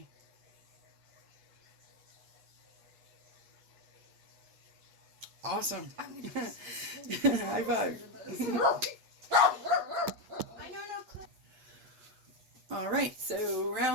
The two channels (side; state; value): left; late; 8.4 ms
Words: Awesome. High five. I know no clue. All right, so